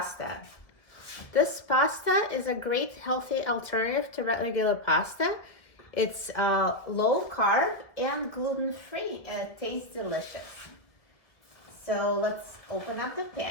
This pasta is a great healthy alternative to regular pasta. It's low carb and gluten-free and it tastes delicious. So let's open up the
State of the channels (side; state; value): right; late; 1.5 ms